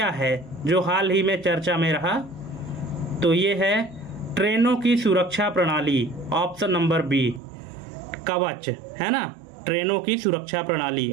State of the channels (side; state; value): left; drops out; at 7.4 s